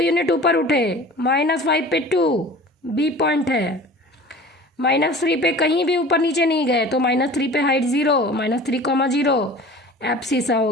ऊपर उठे, -5 पे 2 बी पॉइंट है। -3 पे कहीं भी ऊपर नीचे नहीं गए, तो -3 पे हाइट 0, -3, 0 एब्सिसा हो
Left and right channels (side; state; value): both; normal; correlation 0.41